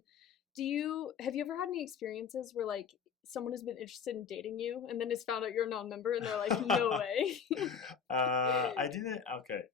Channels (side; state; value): right; quieter; 6.6 dB